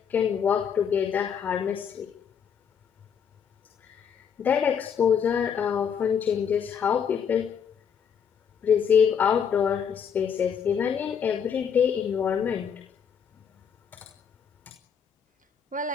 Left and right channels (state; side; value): quieter; right; 7.3 dB